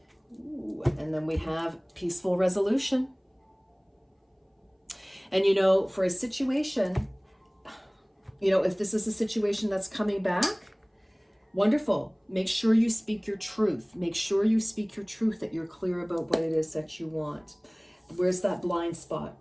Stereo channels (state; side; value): identical; both; correlation 1.00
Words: Ooh, and then we have peaceful resolution. And for a situation, if this is a situation that's coming back, wonderful. Make sure you speak your truth. Make sure you speak your truth, that you're clear about what it is that you want. Where's that blind spot?